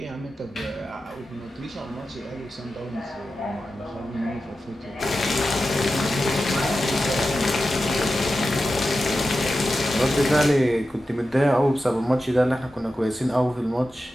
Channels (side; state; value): both; normal; correlation 0.92